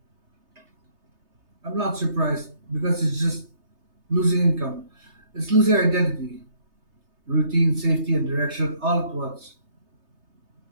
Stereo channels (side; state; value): left; late; 3.3 ms